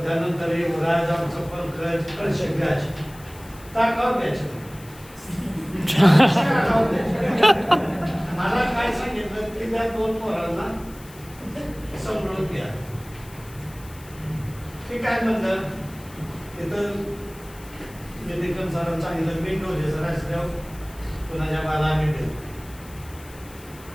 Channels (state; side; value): noise; left; hiss, 21 dB below the sound